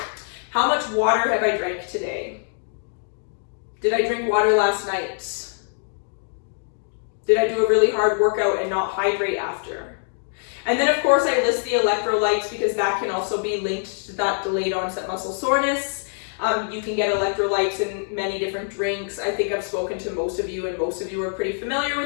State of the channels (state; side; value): silent; right; digital silence